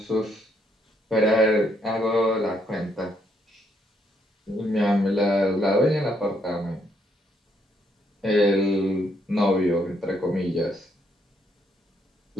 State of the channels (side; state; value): both; normal; correlation 0.73